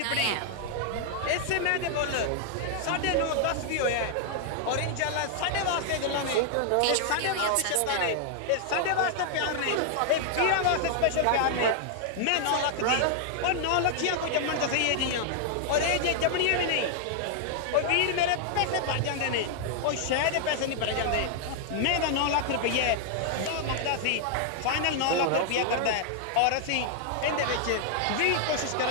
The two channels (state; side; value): different; both; correlation -0.01